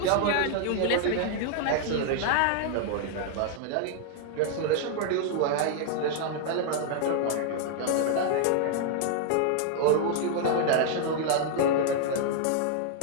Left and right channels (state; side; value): different; both; correlation 0.00